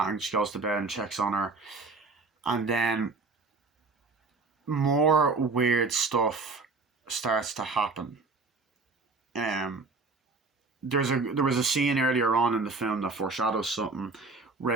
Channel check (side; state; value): left; quieter; 3.9 dB